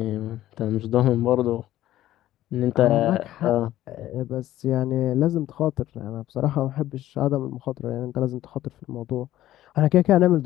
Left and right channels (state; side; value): quieter; right; 13.9 dB